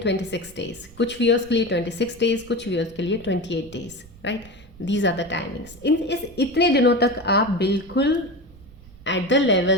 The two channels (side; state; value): right; noise; rumble, 22 dB below the sound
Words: डेज, कुछ व्यूअर्स के लिए 26 डेज, कुछ व्यूअर्स के लिए 28 days, right. These are the timings. इस इतने दिनों तक आप बिल्कुल एट द